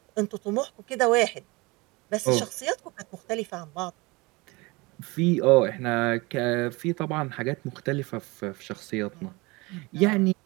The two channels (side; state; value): left; quieter; 24.5 dB